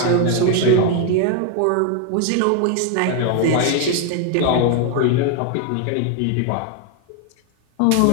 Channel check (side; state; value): both; different; correlation 0.01